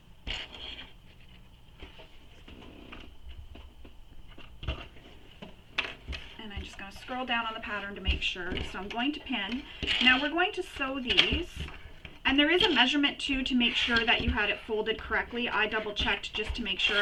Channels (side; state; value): both; identical; correlation 1.00